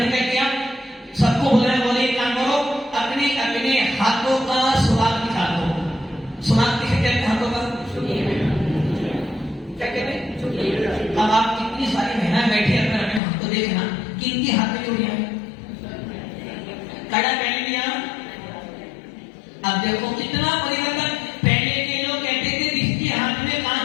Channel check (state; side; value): drops out; right; at 13.2 s